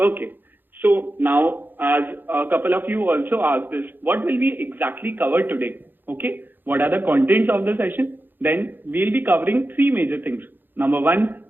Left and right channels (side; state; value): left; late; 0.092 ms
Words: So now, as a couple of you also asked this, what will we exactly cover today? Okay. What are the contents of the session? Then we'll be covering three major things. Number one,